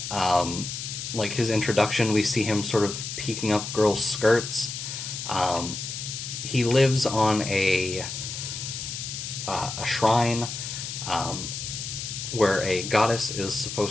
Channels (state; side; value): noise; left; hiss, 6 dB below the sound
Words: Like his introduction, we see him sort of peeking up girls' skirts. Um, he lives on a shrine um, where a goddess is